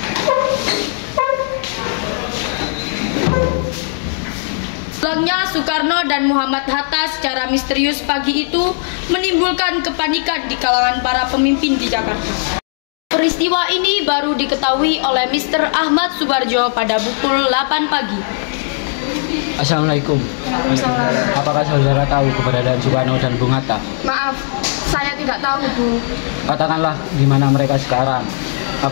Pulangnya Soekarno dan Muhammad Hatta secara misterius pagi itu menimbulkan kepanikan di kalangan para pemimpin di Jakarta. Peristiwa ini baru diketahui oleh Mr. Ahmad Subarjo pada pukul 8 pagi. Assalamualaikum. Waalaikumsalam. Apakah saudara tahu keberadaan Soekarno dan Bung Hatta? Maaf, saya tidak tahu, Bu. Katakanlah di mana mereka sekarang.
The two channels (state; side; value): silent; right; digital silence